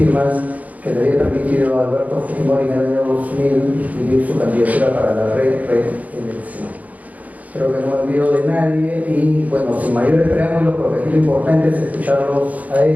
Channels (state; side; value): late; left; 0.074 ms